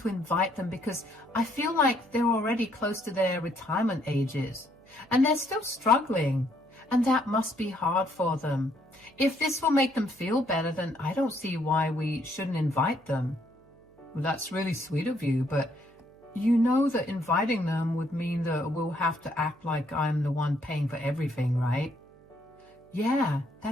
invite them because I feel like they're already close to their retirement ages, and they're still struggling, and that must be hard for them. If this will make them feel better, then I don't see why we shouldn't invite them. Well, that's really sweet of you, but you know that inviting them would mean that we'll have to act like I'm the one paying for everything, right? Yeah,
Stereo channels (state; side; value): noise; right; hum, 29 dB below the sound